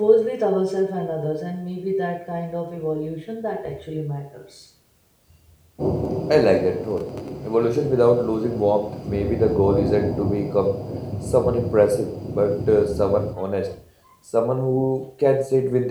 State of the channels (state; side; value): identical; both; correlation 1.00